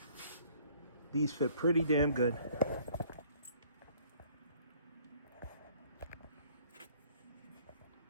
these fit pretty damn good.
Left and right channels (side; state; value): both; inverted; correlation -0.59